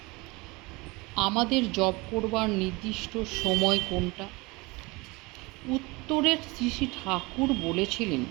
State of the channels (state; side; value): quieter; left; 24.5 dB